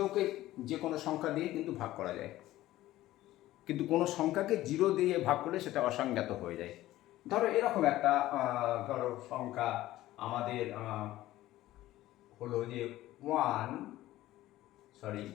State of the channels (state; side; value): quieter; right; 15.6 dB